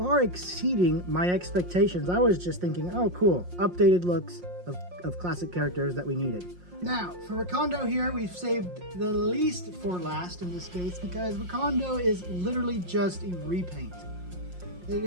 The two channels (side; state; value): left; late; 5.6 ms